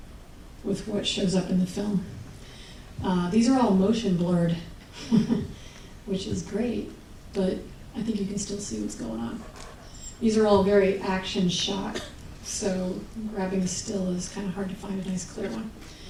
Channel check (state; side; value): identical; both; correlation 1.00